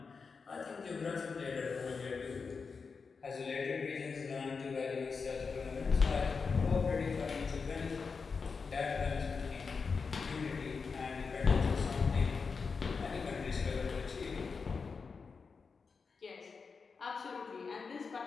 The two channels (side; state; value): right; quieter; 5.1 dB